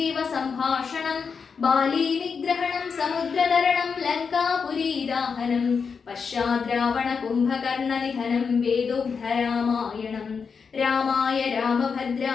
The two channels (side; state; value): right; quieter; 5.7 dB